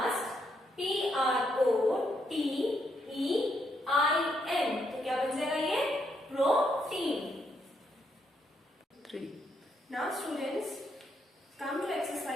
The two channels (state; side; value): normal; both; correlation 0.76